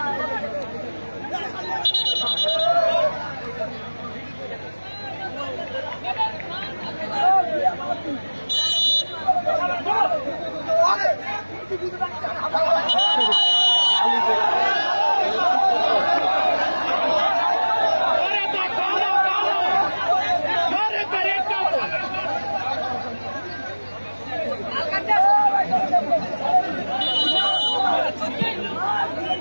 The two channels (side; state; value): both; inverted; correlation -1.00